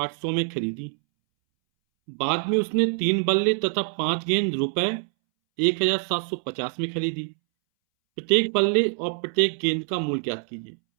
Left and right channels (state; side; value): silent; left; 62 dB below the other